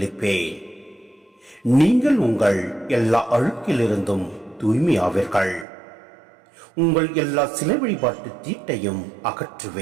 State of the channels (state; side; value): drops out; left; at 5.7 s